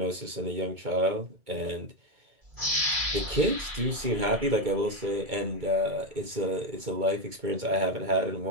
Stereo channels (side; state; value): left; late; 2.2 ms